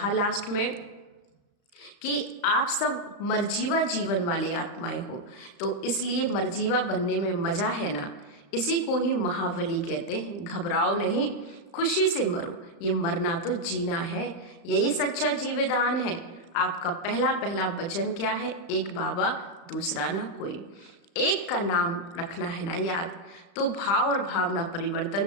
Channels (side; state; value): right; late; 35 ms